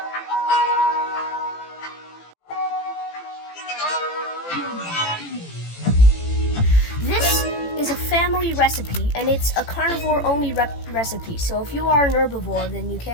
This is a family recipe, and it's a carnivore-only recipe. So if you are an herbivore, then you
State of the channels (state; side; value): late; right; 18 ms